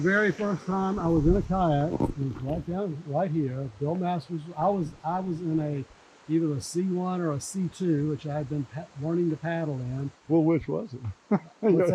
first time I was in a kayak, it was right here. Bill Masters. I was in either a C1 or a C2, which I had been learning to paddle in. Well, which was it? What's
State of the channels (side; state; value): both; identical; correlation 1.00